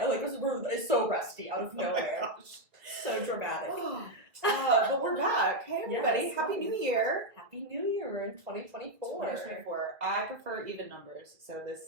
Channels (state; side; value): late; left; 1.9 ms